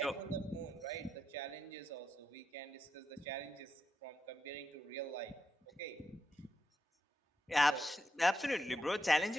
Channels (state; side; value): normal; both; correlation 0.85